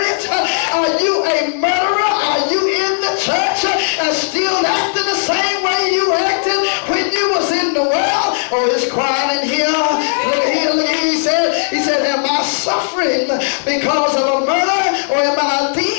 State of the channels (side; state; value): right; silent; digital silence